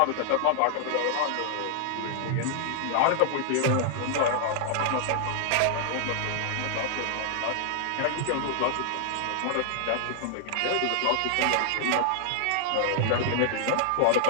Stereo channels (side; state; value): both; different; correlation 0.00